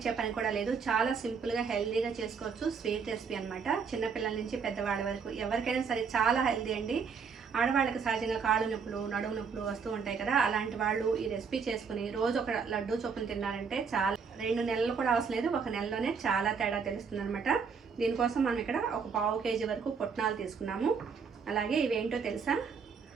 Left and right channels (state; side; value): quieter; left; 5.9 dB